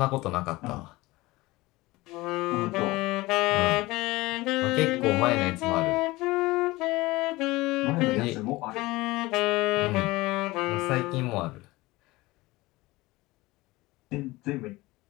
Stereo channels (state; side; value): quieter; right; 20.5 dB